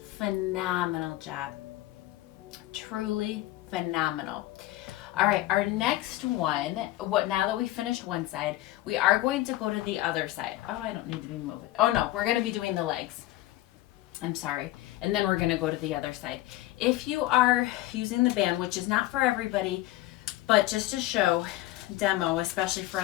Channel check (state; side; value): quieter; right; 16.5 dB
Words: Phenomenal job. Truly phenomenal. All right, our next one, now that we finished one side, we are going to go to the other side. Oh, I don't need to be moving. Oh no, we're going to be doing the legs. I'm sorry. And then we're going to go to the other side. If you are using the band, which is not for everybody, but just to show, demo, especially for